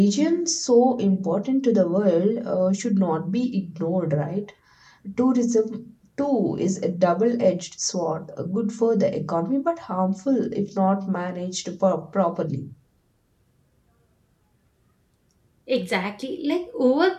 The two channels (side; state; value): both; identical; correlation 1.00